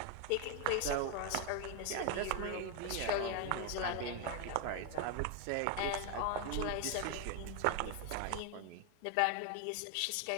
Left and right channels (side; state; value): both; different; correlation 0.01